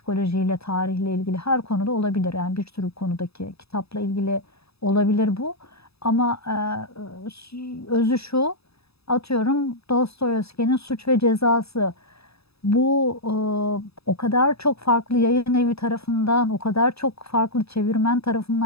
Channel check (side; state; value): right; late; 0.78 ms